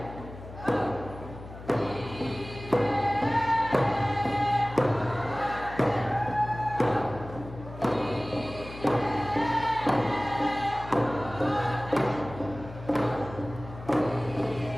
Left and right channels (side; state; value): left; noise; hum, 14 dB below the sound